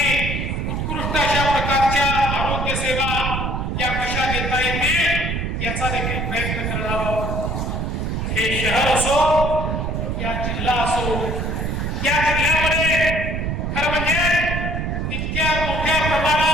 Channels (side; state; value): right; noise; rumble, 2 dB below the sound